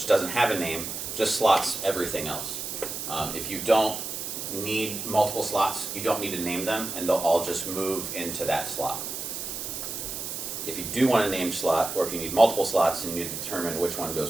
doesn't have a name, just slots everything else. If you don't need multiple slots, you don't need to name them, and they'll all just move into that slot. If you do want a named slot, or if you need multiple slots and you need to determine which one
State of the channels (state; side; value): noise; right; hiss, 6 dB below the sound